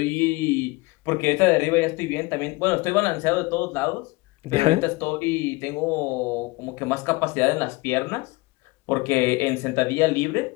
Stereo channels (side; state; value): right; quieter; 23.5 dB